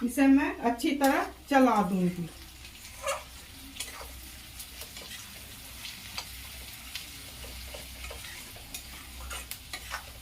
इसे मैं अच्छी तरह चला दूंगी।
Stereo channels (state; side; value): identical; both; correlation 1.00